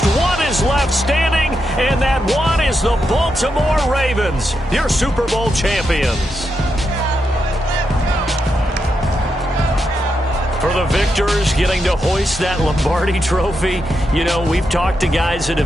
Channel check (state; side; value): normal; both; correlation 0.84